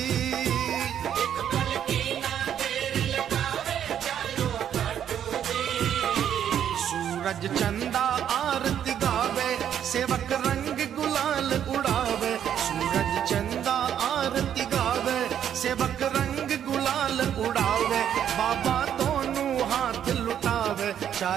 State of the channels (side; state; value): left; quieter; 9.6 dB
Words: एक पल की ना देर लगावे, चालो खाटू जी। सूरज चंदा आरती गावे, सेवक रंग गुलाल उड़ावे। सूरज चंदा आरती गावे, सेवक रंग गुलाल उड़ावे। बाबा दोनों हाथ बचा